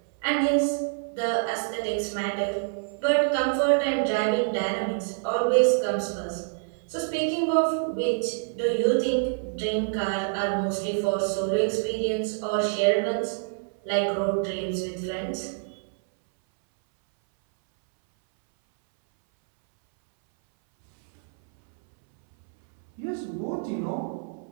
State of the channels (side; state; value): left; silent; 61 dB below the other